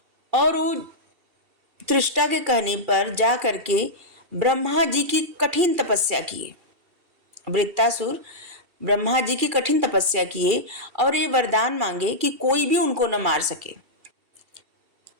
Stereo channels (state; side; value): late; left; 2.7 ms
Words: और वो त्रिष्टा के कहने पर जा करके ब्रह्मा जी की कठिन तपस्या किए। वृत्तासुर ब्रह्मा जी की कठिन तपस्या किए और ये वरदान मांगे कि कोई भी उनको न मार सके,